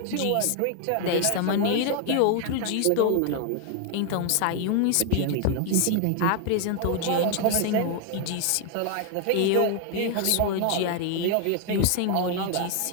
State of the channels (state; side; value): different; both; correlation 0.00